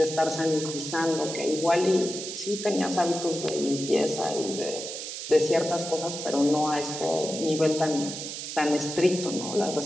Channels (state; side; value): noise; right; hiss, 7 dB below the sound